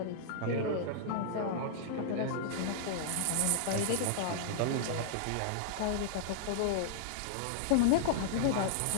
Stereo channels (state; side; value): different; both; correlation -0.02